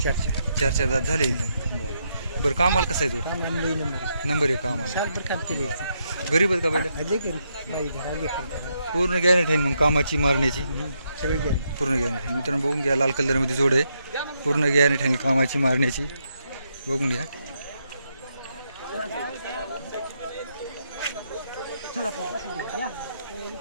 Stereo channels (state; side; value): inverted; both; correlation -0.79